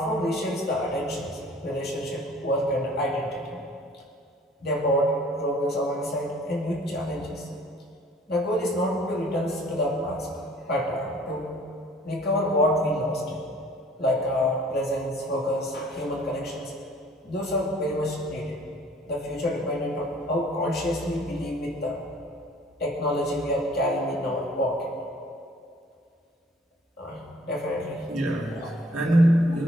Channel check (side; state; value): both; normal; correlation 0.54